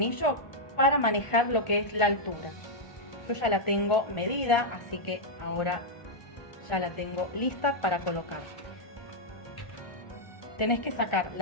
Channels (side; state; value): right; late; 1.4 ms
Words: para manejar lo que es la altura. Yo ya la tengo medida, así que ahora ya la tengo lista para colocar. Tenés que sacar